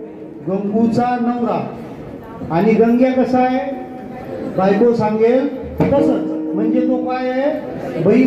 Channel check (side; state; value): both; identical; correlation 1.00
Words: गंगूचा नवरा. आणि गंग्या कसा आहे? बायको सांगेल तसंच. म्हणजे तो काय आहे?